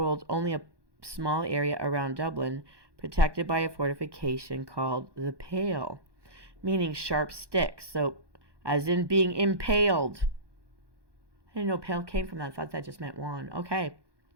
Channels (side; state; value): left; late; 1.2 ms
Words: only a small area around Dublin, protected by a fortification called the Pale, meaning sharp sticks. So, as in being impaled. I didn't know pale came from that. I thought that just meant wand. Okay.